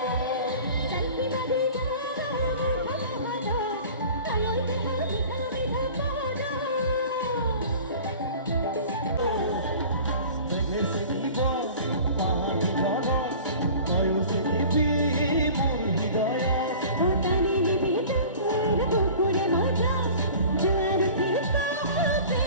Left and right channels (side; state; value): both; inverted; correlation -0.43